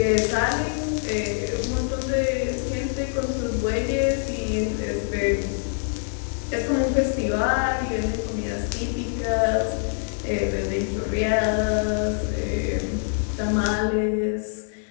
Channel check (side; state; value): right; silent; 62 dB below the other